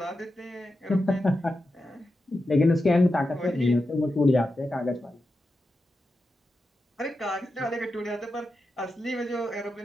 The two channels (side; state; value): both; normal; correlation 0.89